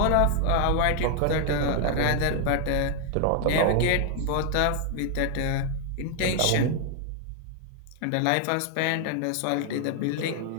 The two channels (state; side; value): different; both; correlation 0.00